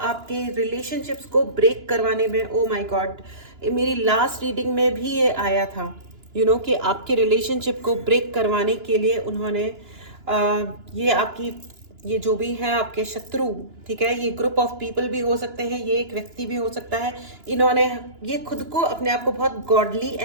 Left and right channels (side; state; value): left; late; 2.9 ms